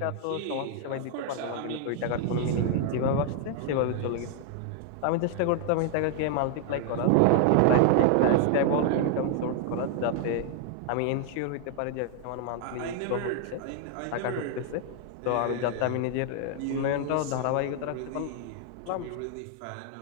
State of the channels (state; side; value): different; both; correlation 0.00